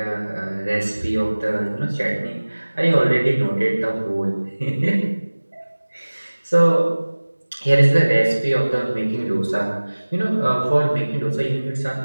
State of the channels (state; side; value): inverted; both; correlation -1.00